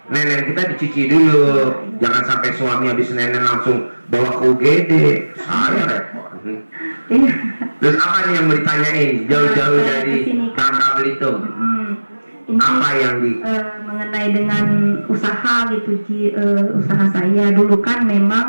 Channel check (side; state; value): both; inverted; correlation -1.00